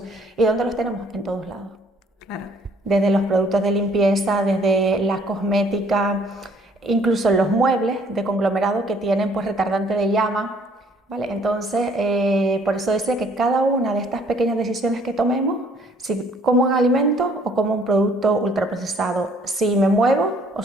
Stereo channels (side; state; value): both; normal; correlation 0.60